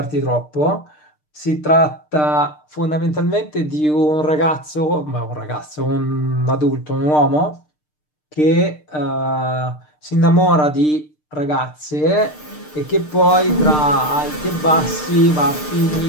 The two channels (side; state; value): right; late; 6.6 ms